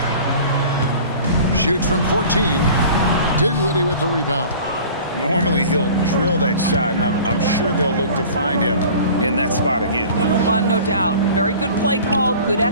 Shoots from 14. Dinwiddie with the rebound. Normally he'll drill that shot, and I'm sure they'll look to find him in that spot again. No doubt. Very good play call, good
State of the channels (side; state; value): both; inverted; correlation -0.44